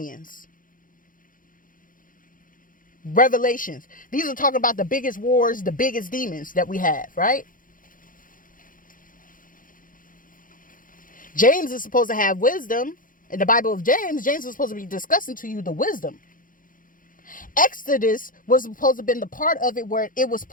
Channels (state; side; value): late; right; 0.40 ms